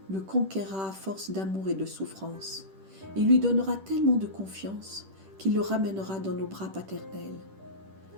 le conquérera à force d'amour et de souffrance. Il lui donnera tellement de confiance qu'il le ramènera dans nos bras paternels.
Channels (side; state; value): left; late; 10 ms